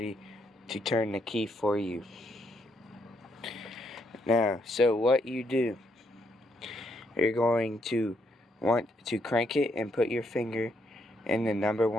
to turn the key for you. Now, so what you do, you're going to want to crank it and put your finger in the number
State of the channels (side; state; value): both; normal; correlation 0.75